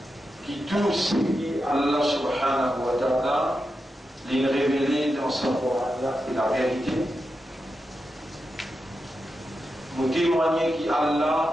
qui tous qui Allah subhanahu wa ta'ala les révélé dans son Coran et la vérité. Vous témoignez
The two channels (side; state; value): both; normal; correlation 0.89